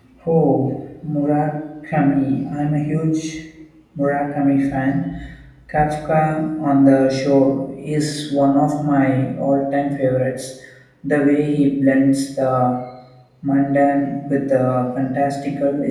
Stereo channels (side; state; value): both; identical; correlation 1.00